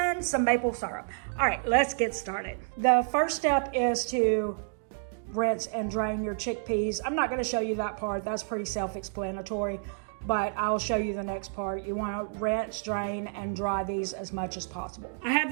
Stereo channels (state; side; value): silent; left; digital silence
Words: some maple syrup. All right, let's get started. The first step is to rinse and drain your chickpeas. I'm not going to show you that part. That's pretty self-explanatory, but I'll show you the next part. You want to rinse, drain, and dry these as much as possible. I have